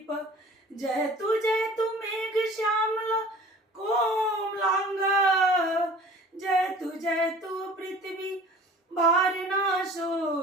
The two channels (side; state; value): both; normal; correlation 0.46